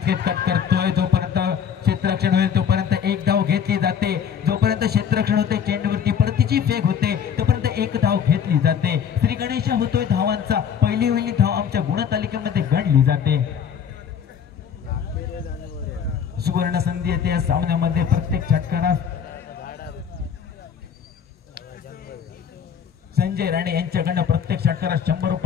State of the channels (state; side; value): quieter; right; 7.9 dB